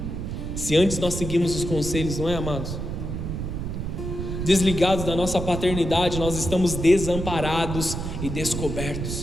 Se antes nós seguimos os conselhos, não é, amados? Desligados da nossa paternidade, nós estamos desamparados e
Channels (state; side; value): noise; right; rumble, 4 dB below the sound